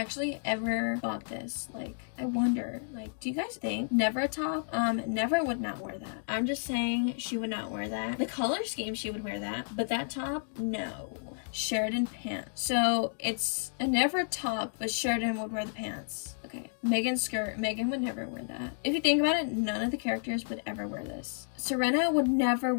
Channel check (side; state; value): right; silent; digital silence